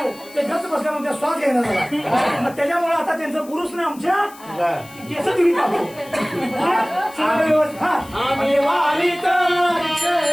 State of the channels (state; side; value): noise; left; hiss, 21 dB below the sound